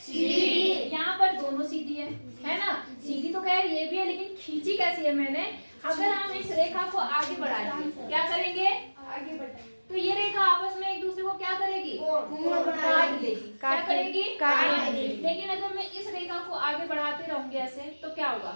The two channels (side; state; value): both; inverted; correlation -1.00